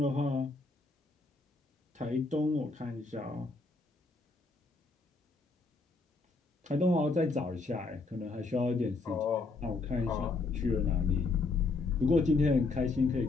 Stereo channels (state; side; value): quieter; right; 3.8 dB